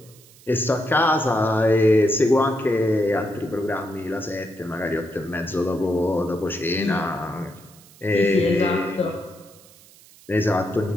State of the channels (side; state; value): right; noise; hiss, 25 dB below the sound